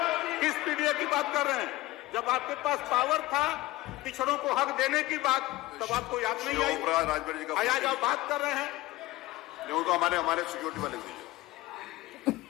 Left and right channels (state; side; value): quieter; right; 18.5 dB